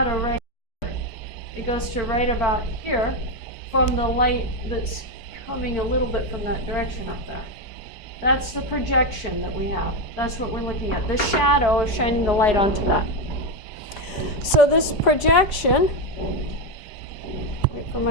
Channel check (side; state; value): right; late; 5.0 ms